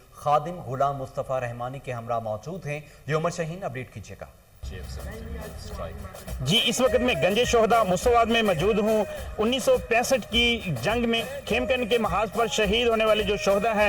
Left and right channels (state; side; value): identical; both; correlation 1.00